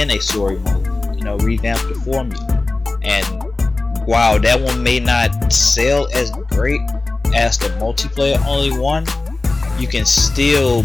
a story mode. You know, revamp the formula. And while that one may not sell as great as the multiplayer only one, you can still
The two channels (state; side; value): quieter; right; 3.2 dB